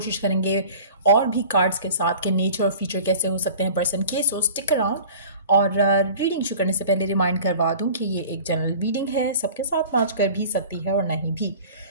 करेंगे और भी कार्ड्स के साथ के नेचर और फीचर कैसे हो सकते हैं पर्सन के। सो स्टिक अराउंड। और रीडिंग शुरू करने से पहले रिमाइंड करवा दूं कि ये एक जनरल रीडिंग है, सबके साथ मैच कर भी सकती है और नहीं भी।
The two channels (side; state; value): both; inverted; correlation -0.43